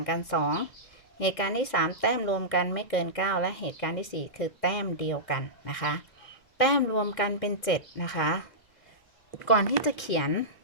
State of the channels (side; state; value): right; late; 2.1 ms